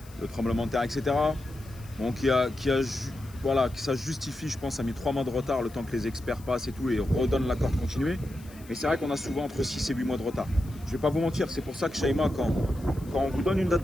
le tremblement de terre, etc. Bon, voilà, que ça justifie, je pense, ça a mis 3 mois de retard le temps que les experts passent et tout et redonnent l'accord de continuer. Mais c'est vrai qu'on a souvent entre 6 et 8 mois de retard. Je vais pas vous mentir, c'est pour ça que Shaima, quand on vous donne une date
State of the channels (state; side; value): noise; left; hiss, 23 dB below the sound